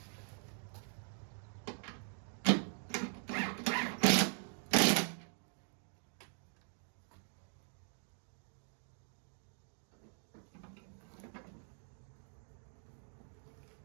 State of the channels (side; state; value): left; silent; 50 dB below the other